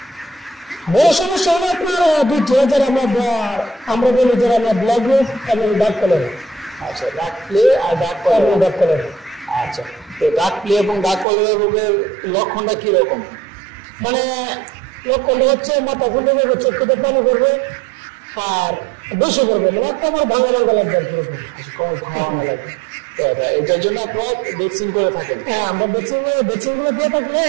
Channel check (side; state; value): left; drops out; at 11.2 s